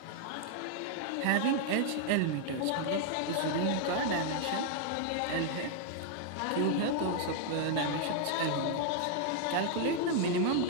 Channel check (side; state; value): both; different; correlation 0.00